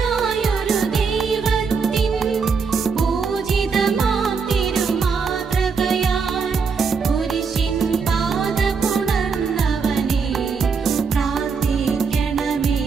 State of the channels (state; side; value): quieter; left; 5.4 dB